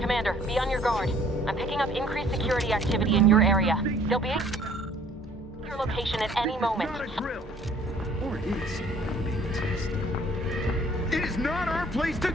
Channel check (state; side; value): normal; both; correlation 0.56